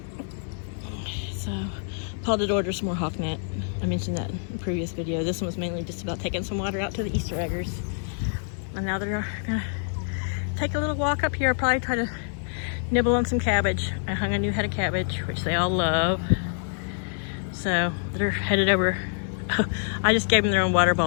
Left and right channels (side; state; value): right; silent; digital silence